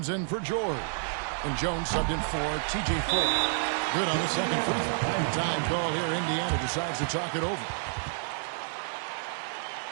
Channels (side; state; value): left; silent; 58 dB below the other